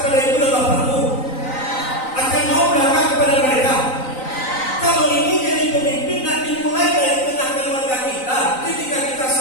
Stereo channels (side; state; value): right; late; 3.9 ms